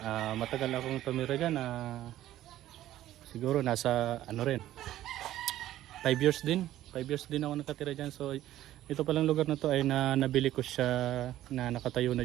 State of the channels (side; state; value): left; quieter; 13.6 dB